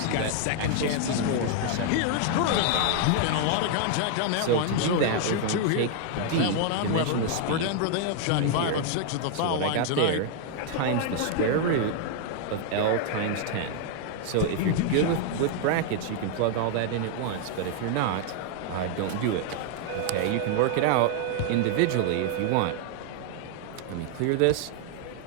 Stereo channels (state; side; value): different; both; correlation 0.00